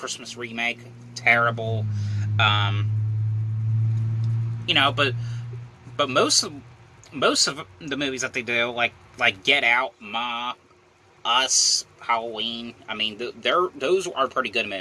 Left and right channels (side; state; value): both; identical; correlation 1.00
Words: remake, terrible. But most of the movies that they do, like Get Out, Ma, Us, Halloween, I mean, those are pretty good